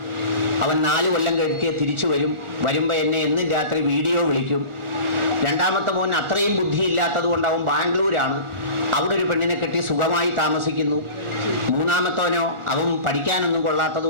അവൻ 4 കൊല്ലം കഴിഞ്ഞ് തിരിച്ചു വരുമ്പോൾ എന്നെ എന്നും രാത്രി വീഡിയോ വിളിക്കും. രണ്ടാമത്തെ മോൻ അത്രയും ബുദ്ധിയില്ലാത്തത് കൊണ്ട് അവൻ ബാംഗ്ലൂരാണ്, അവിടെ ഒരു പെണ്ണിനെ കെട്ടി സുഖമായി താമസിക്കുന്നു. മൂന്നാമത്തവനോ അവൻ പഠിക്കാനൊന്നും കൊള്ളാത്തത്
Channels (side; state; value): left; late; 1.4 ms